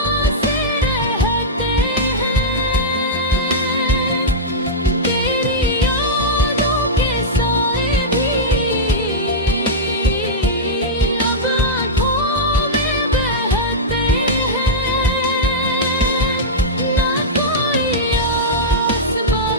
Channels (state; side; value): normal; both; correlation -0.09